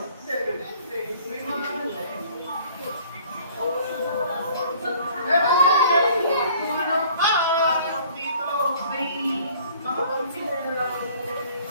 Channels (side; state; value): both; inverted; correlation -0.53